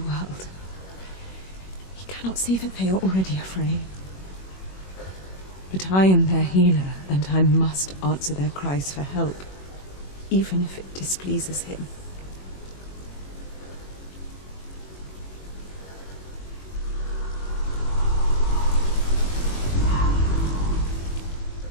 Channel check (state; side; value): late; right; 21 ms